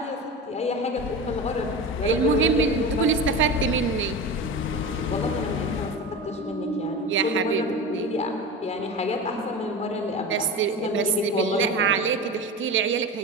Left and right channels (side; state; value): both; normal; correlation 0.27